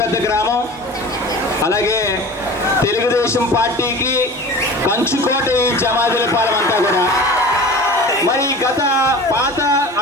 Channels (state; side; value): normal; both; correlation 0.37